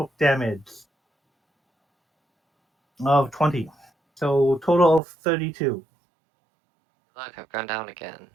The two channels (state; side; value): drops out; left; at 5.0 s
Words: damage of 20. So total of 32. Look, I've gone down again.